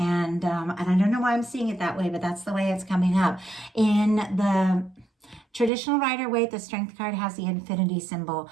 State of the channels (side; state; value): left; drops out; at 5.7 s